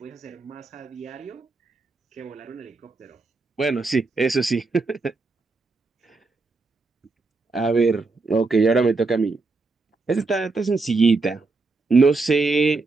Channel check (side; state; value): left; quieter; 3.8 dB